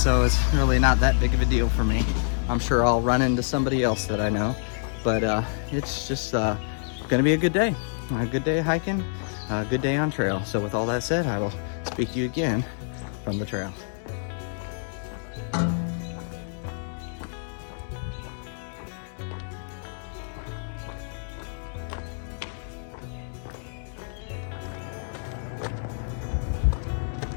it's really not that big of a deal for me. I'm sure I'll run into somebody else that I know, but it's just gonna be a good day. A good day hiking, a good day on trail. So with all that said, I will speak to you again from the trail.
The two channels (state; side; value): silent; right; 60 dB below the other